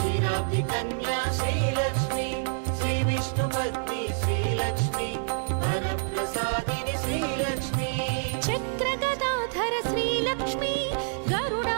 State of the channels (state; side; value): silent; left; 60 dB below the other